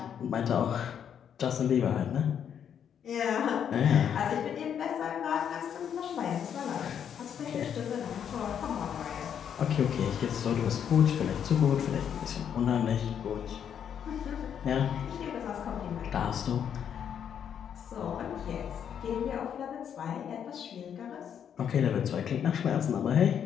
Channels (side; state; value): right; quieter; 8.5 dB